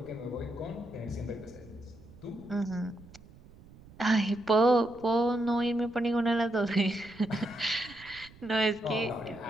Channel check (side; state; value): right; noise; rumble, 22 dB below the sound